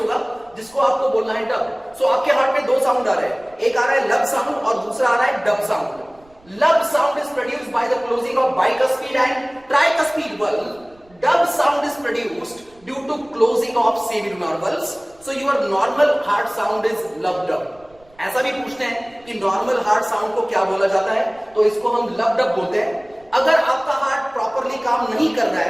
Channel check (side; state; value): right; noise; rumble, 30 dB below the sound